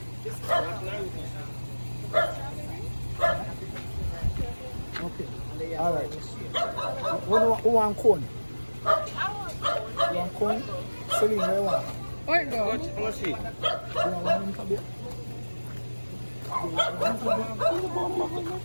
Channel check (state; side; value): inverted; both; correlation -1.00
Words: Okay. Alright. Who want cone? You want cone? Celine, where you want? Where it go? How much she? You want one in for beer? Come